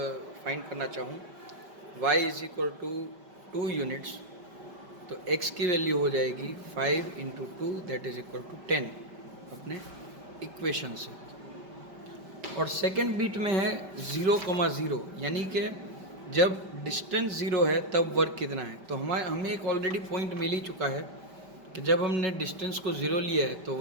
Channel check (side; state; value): left; late; 5.1 ms